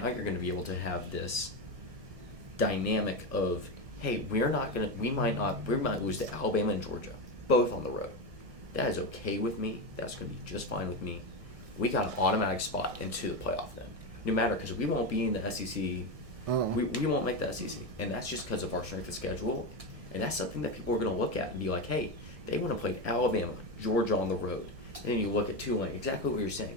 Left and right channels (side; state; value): left; late; 1.6 ms